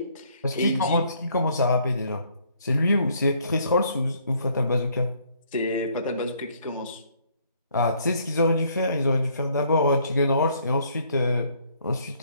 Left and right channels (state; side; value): inverted; both; correlation -0.65